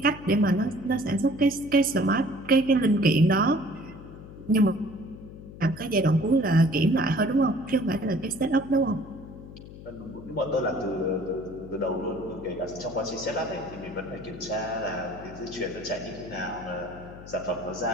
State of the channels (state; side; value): noise; left; hum, 15 dB below the sound